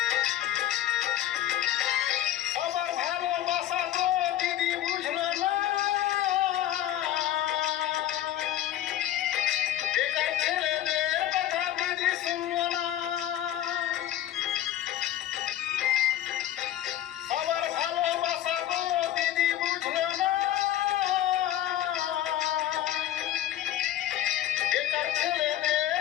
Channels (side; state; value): right; quieter; 12.5 dB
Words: সবার ভালোবাসা তো দিদি বুঝলো না, বেকার ছেলেদের কথা দিদি শুনলো না। সবার ভালোবাসা তো দিদি বুঝলো না, বেকার